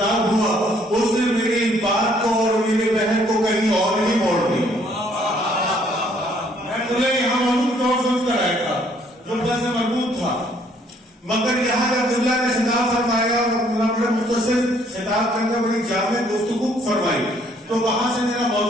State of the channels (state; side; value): normal; both; correlation 0.64